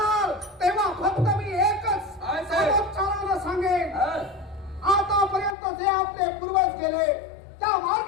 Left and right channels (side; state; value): right; drops out; at 5.6 s